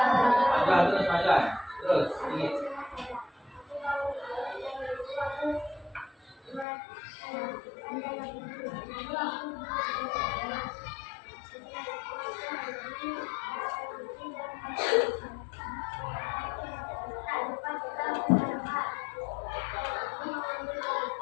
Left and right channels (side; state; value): right; drops out; at 6.7 s